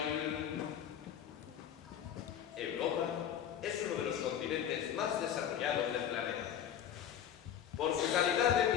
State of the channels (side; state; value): right; quieter; 9.5 dB